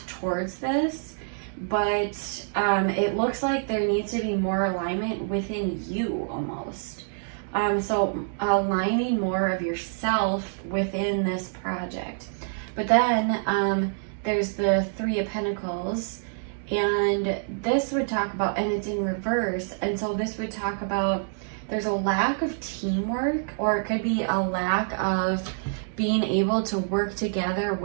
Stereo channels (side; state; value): left; silent; digital silence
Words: towards this, but it looks like there needs to be more alignment within you almost. So aligning more of yourself within this project. But then there's the Three of Pentacles, and this would talk about, and it's in reverse, and so this would talk about there's a lack of teamwork, or it could be a lack of being able to work together